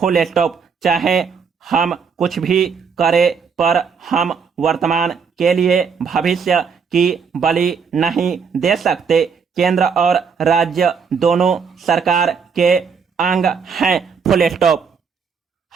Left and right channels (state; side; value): quieter; left; 6.0 dB